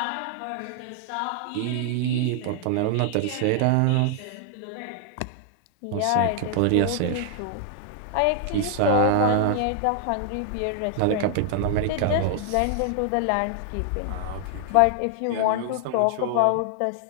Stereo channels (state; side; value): different; both; correlation 0.00